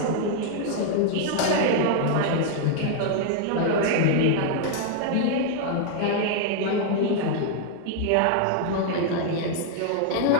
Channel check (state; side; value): different; both; correlation 0.00